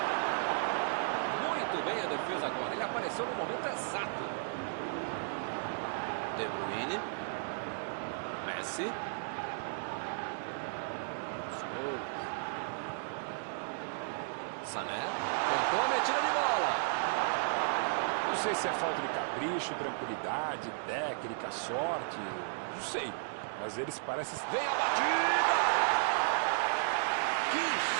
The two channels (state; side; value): silent; left; digital silence